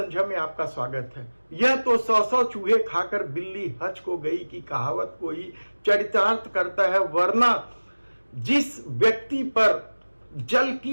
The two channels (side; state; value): both; inverted; correlation -1.00